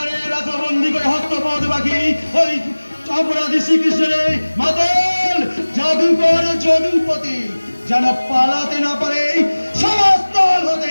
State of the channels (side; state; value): both; inverted; correlation -1.00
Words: রাজবন্দী করে হস্তপদ বাকি ওই অপরাধী শ্রীকৃষ্ণের মাতল জাদুকর যদুপতি যেন পালাতে না পারে সমস্তল